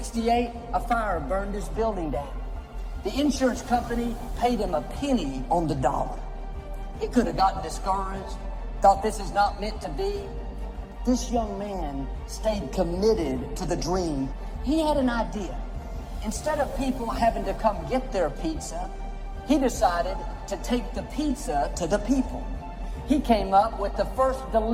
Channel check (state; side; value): identical; both; correlation 1.00